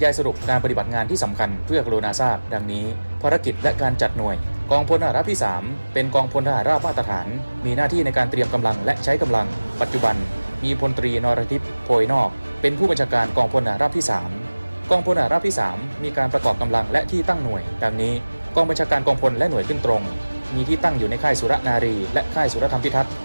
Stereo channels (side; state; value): both; inverted; correlation -1.00